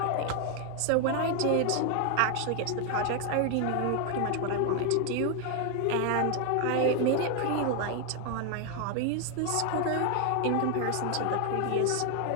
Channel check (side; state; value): both; different; correlation 0.01